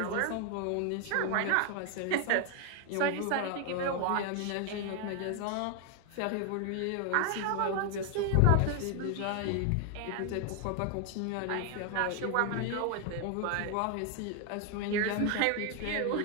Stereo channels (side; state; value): both; different; correlation 0.01